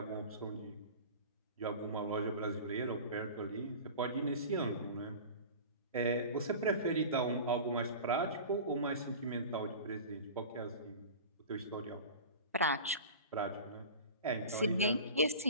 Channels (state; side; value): inverted; both; correlation -0.35